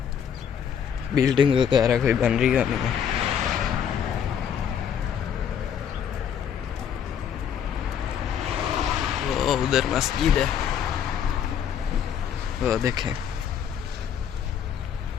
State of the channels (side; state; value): right; quieter; 8.4 dB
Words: बिल्डिंग वगैरह कोई बन रही है नहीं है। वो उधर मस्जिद है, वो देखें।